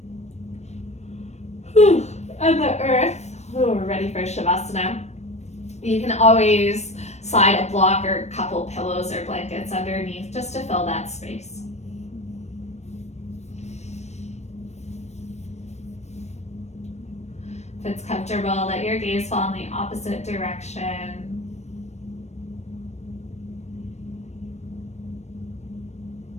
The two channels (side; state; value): right; late; 0.32 ms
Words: and the earth, we're ready for Shavasana. You can always slide a block or a couple pillows or blankets underneath just to fill that space. If it's comfortable, let your gaze fall in the opposite direction.